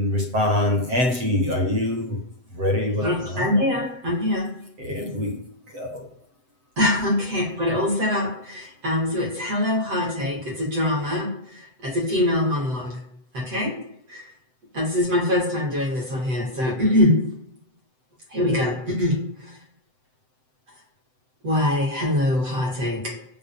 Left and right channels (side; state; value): left; late; 7.8 ms